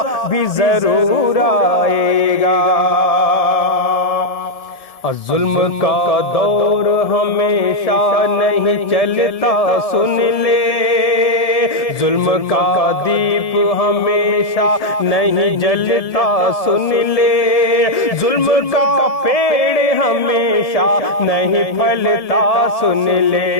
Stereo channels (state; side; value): late; right; 1.8 ms